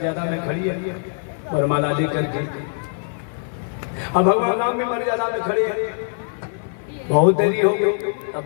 में खड़ी है वरमाला लेकर के। अब भगवान राम भी मर्यादा में खड़े हैं। बहुत देरी हो गई, तब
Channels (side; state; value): right; silent; 56 dB below the other